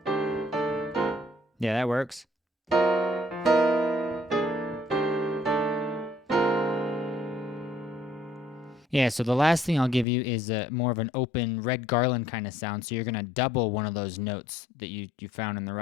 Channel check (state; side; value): drops out; right; at 10.1 s